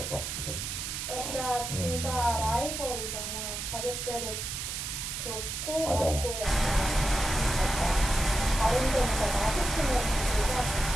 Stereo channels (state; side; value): noise; right; hiss, 5 dB below the sound